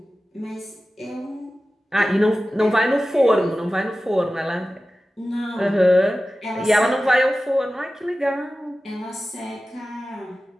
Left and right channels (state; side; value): normal; both; correlation 0.95